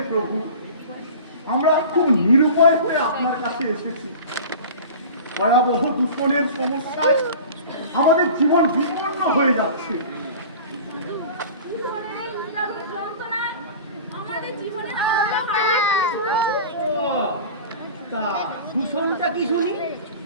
প্রভু, আমরা খুব নিরুপায় হয়ে আপনার কাছে এসেছি। ভয়াবহ দূষণের সমস্যায় আমাদের জীবন বিপন্ন হয়ে যাচ্ছে। দূষণের এই নিদারুণ যন্ত্রণায় আমাদের জীবনের আলোটা হারিয়ে ফেলেছি প্রভু। ও, তা দূষণটা কি শুনি?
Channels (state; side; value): inverted; both; correlation -0.38